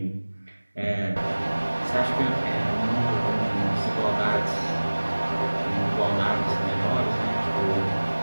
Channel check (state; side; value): inverted; both; correlation -1.00